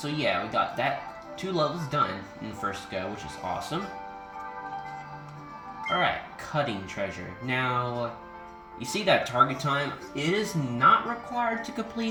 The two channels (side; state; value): both; identical; correlation 1.00